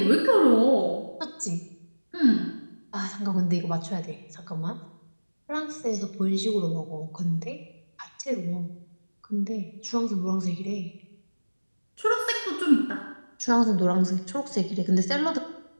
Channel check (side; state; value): both; inverted; correlation -1.00